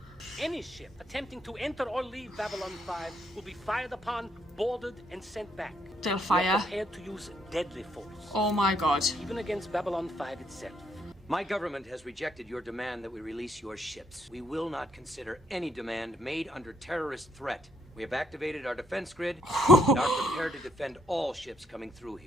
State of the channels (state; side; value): normal; both; correlation 0.72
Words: Any ship attempting to enter or leave Babylon 5 will be fired upon, boarded, and sent back. They'll We are fire. prepared to use deadly force, Oh my god. even against Babylon 5 itself. My government has rejected your demand that we release your ships. We will not consider any demand made under terrorist threat. We have activated our defense grid and are prepared to defend all ships coming through